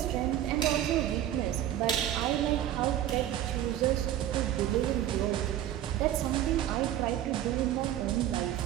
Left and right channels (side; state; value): left; quieter; 12.1 dB